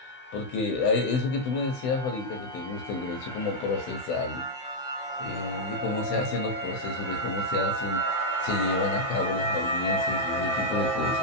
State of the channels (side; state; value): right; late; 16 ms